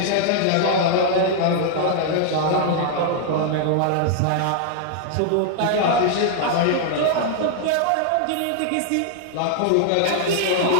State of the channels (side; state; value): both; different; correlation 0.00